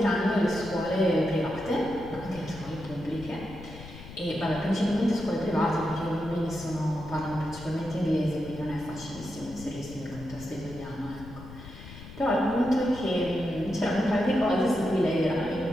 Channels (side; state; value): left; noise; rumble, 15 dB below the sound